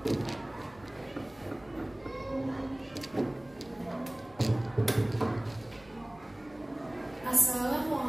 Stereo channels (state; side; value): noise; right; rumble, 25 dB below the sound